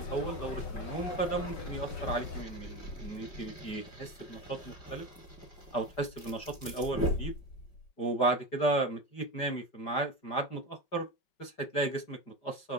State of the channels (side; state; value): right; late; 5.0 ms